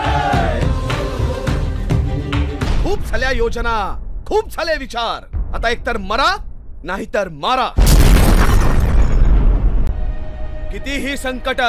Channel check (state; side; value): identical; both; correlation 1.00